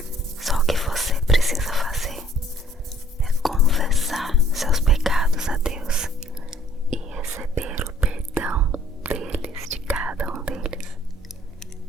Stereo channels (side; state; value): both; normal; correlation 0.58